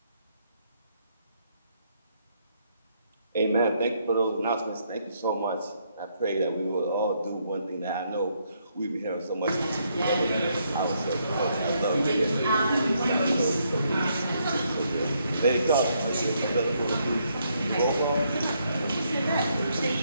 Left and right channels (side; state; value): both; inverted; correlation -0.74